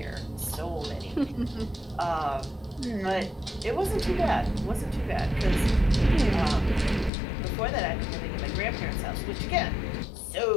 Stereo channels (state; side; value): drops out; right; at 7.1 s